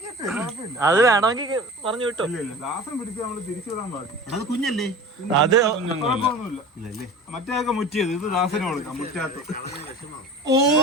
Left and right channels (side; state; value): both; normal; correlation 0.37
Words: അത് വേണമെങ്കിൽ പറഞ്ഞു വിട്ടോ. ദാസൻ പിടിച്ച് നമ്മള് തിരിച്ചു വിടാൻ പാടില്ല. അത് കുഞ്ഞല്ലേ? അത് കുഴപ്പമൊന്നുമില്ല. മറ്റേതൊക്കെ മുറ്റിയത്, ഇത് ദാസന് കൊടുക്കാം മുറ്റാത്ത.